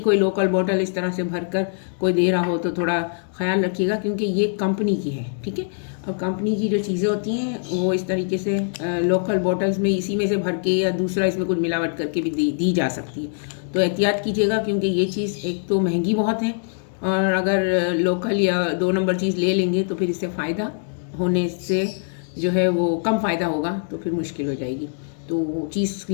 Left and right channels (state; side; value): silent; right; digital silence